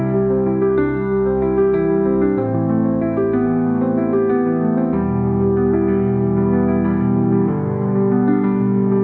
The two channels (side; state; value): both; identical; correlation 1.00